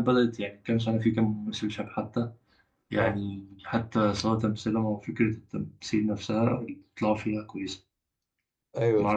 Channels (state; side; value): identical; both; correlation 1.00